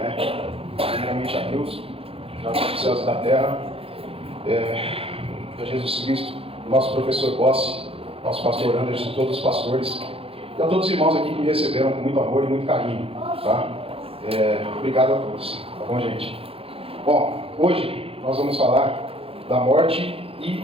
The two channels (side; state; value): left; late; 0.27 ms